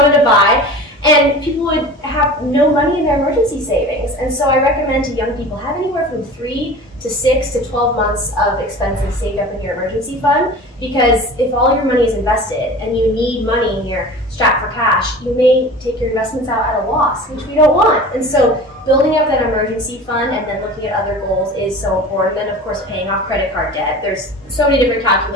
to buy. And people would have no money in their emergency savings. And so I recommend to young people have anywhere from 3 to 6 to 12 months of expenses saved up in your emergency fund, because if all your money is invested and you need money and you're strapped for cash, you may take your investments out at a loss, which we don't want. And so building up that emergency fund and then looking at other goals is so important. Then, of course, paying off credit card debt. There's so many different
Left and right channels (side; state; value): both; normal; correlation 0.37